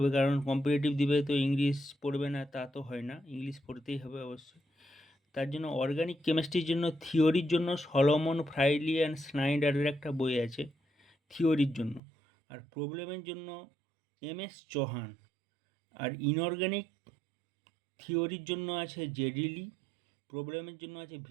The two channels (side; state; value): left; drops out; at 12.0 s